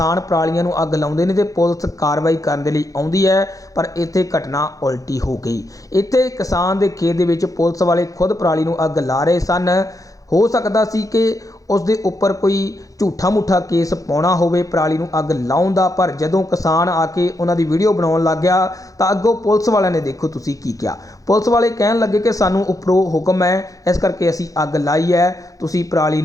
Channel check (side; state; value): right; late; 0.17 ms